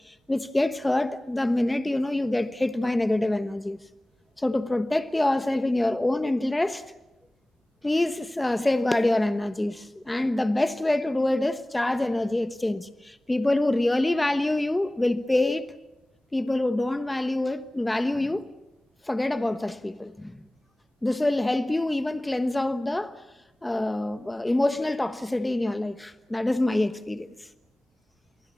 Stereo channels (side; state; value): both; normal; correlation 0.98